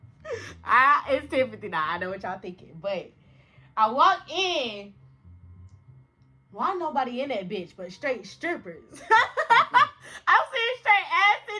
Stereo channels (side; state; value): both; identical; correlation 1.00